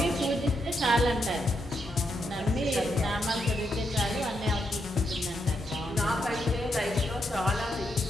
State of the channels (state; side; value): normal; both; correlation 0.80